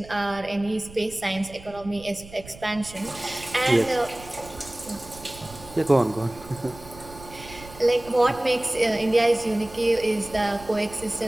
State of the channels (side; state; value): right; noise; rumble, 18 dB below the sound